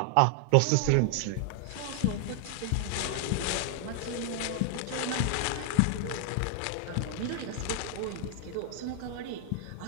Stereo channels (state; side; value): different; both; correlation 0.00